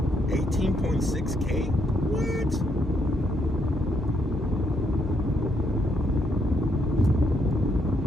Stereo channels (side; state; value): both; normal; correlation 0.75